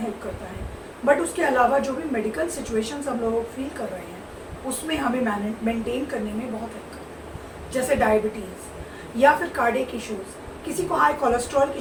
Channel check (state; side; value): identical; both; correlation 1.00